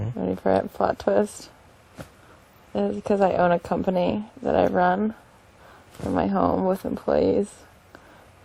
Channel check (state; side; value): identical; both; correlation 1.00